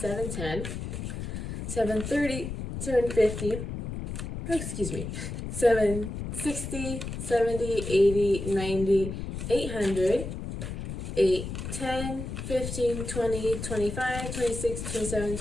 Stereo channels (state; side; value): noise; left; rumble, 6 dB below the sound